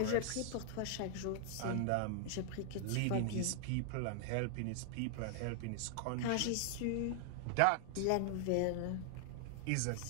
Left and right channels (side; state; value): both; different; correlation 0.00